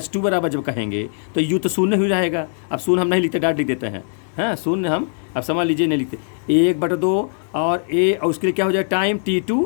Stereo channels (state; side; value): silent; right; digital silence